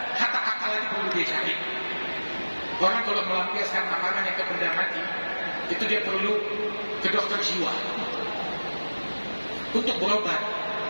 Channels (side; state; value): both; inverted; correlation -1.00